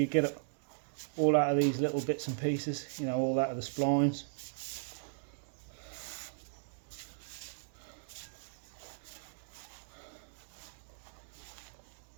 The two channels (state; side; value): silent; left; digital silence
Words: get it all out of these little bits and pieces, you know, all out of the splines.